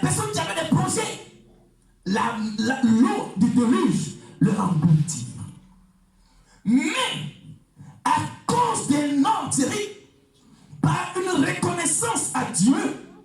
personnes qui avaient des projets. L'eau du déluge leur engloutit. Mais, à cause d'un homme terrible, par une reconnaissance à Dieu,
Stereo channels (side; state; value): both; identical; correlation 1.00